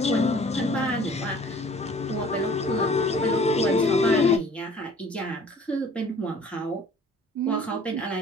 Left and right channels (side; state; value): both; normal; correlation 0.51